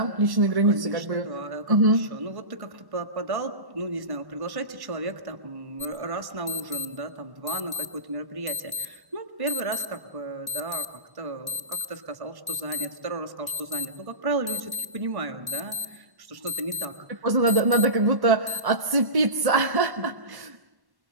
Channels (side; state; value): left; late; 1.1 ms